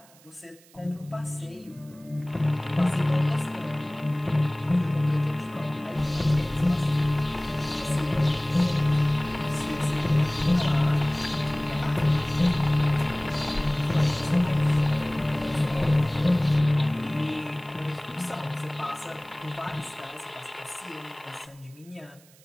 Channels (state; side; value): noise; right; hiss, 27 dB below the sound